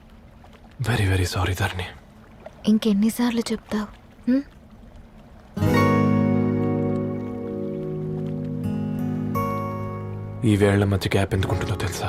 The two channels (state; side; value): identical; both; correlation 1.00